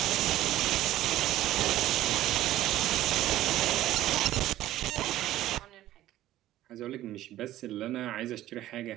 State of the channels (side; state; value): left; quieter; 14.3 dB